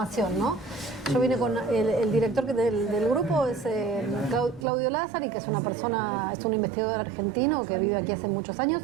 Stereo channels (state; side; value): drops out; left; at 4.7 s